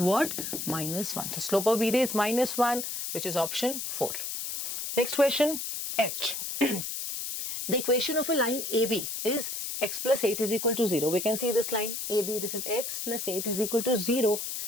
what? -1. So slope of BD is -1, which is option 4. Next question, H. The equation of a line AB is x plus 8 is equal to 0. We can see this line AB, this is x plus 8 is equal to 0.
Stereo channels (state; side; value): noise; left; hiss, 4 dB below the sound